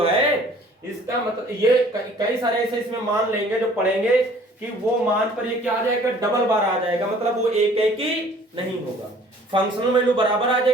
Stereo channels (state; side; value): normal; both; correlation 0.54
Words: है, इसका मतलब ये कई सारे ऐसे इसमें मान लेंगे जो पढ़ेंगे कि वो मान पर ये क्या आ जाएगा, डबल बार आ जाएगा, मतलब वो एक एक ही नहीं होगा। फंक्शनल वैल्यू बराबर आ